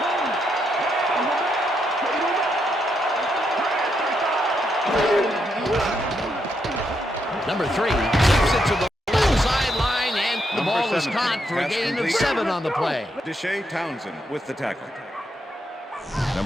Number 3 keeps it to the left sideline, and the ball is caught for a gain of 7 on the play. Deshae Townsend with the tackle.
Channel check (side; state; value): both; normal; correlation 0.79